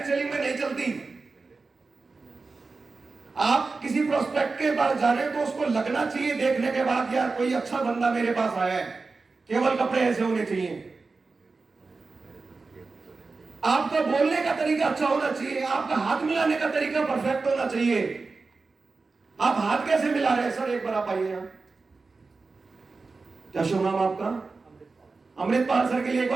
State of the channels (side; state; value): left; quieter; 4.1 dB